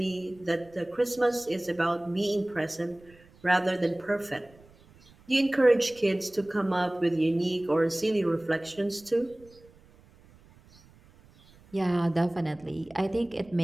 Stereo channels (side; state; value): right; noise; rumble, 27 dB below the sound